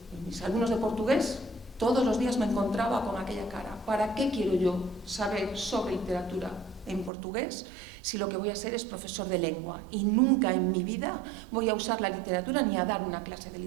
Mis alumnos de portugués todos los días me encontraba con aquella cara. ¿Para qué quiero yo saber sobre literatura en portugués si lo que voy a ser es profesor de lengua? Y nunca en mi vida voy a usar la literatura ni a dar una clase de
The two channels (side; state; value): left; drops out; at 7.1 s